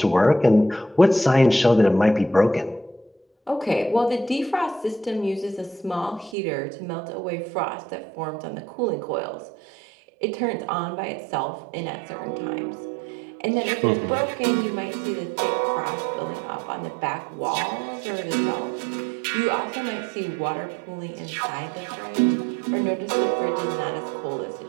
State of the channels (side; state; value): left; drops out; at 6.4 s